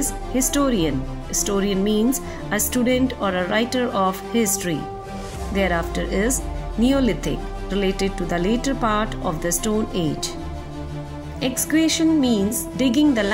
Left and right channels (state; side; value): identical; both; correlation 1.00